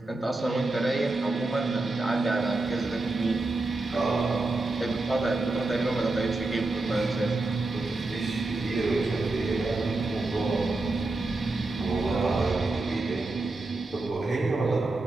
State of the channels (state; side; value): quieter; left; 3.1 dB